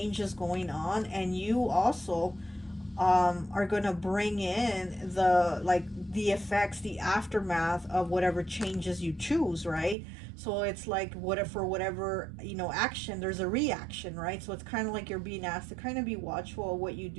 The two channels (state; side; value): drops out; left; at 10.0 s